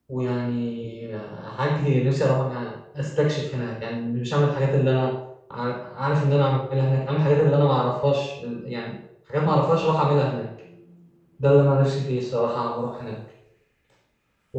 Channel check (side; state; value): both; identical; correlation 1.00